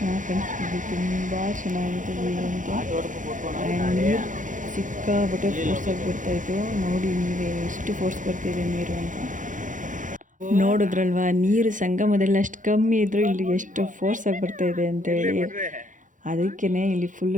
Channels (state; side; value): late; left; 0.37 ms